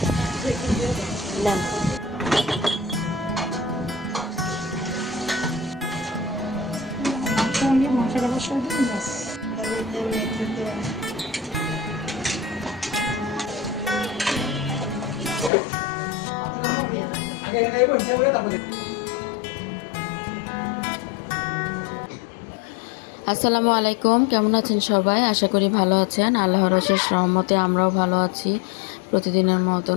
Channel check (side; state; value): right; drops out; at 15.5 s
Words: মশলা বসাই দিন ব্যাস। আসসালামু আলাইকুম, কেমন আছেন সবাই? আশা করি ভালো আছেন। আল্লাহর অশেষ রহমতে আমরাও ভালো আছি। প্রতিদিনের মতো